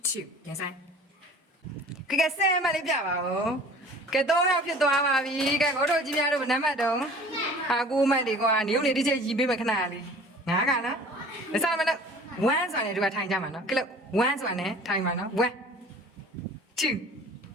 2 yes Iကဲဆဲမလေးပြပါဦးကဲ3ယောက်ဖြစ်သွားပါပြီကဲကိုတို့ကြီးများတို့နံပါတ်တော့ဟာ9မှတ်ဒီကွာနေုံနေတစ်ချက်ရီးပေးမယ်ခဏလေး9ကနော်မစားမလို့1ဆိုတာနဲ့တို့ကထိုင်ကြမှာနော်ကဲလို့1ဆိုတာနဲ့ထိုင်မှာနော်1 2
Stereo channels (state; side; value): normal; both; correlation 0.46